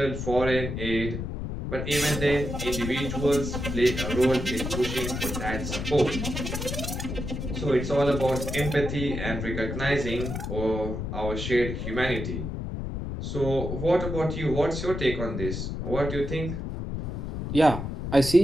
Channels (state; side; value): noise; left; rumble, 4 dB below the sound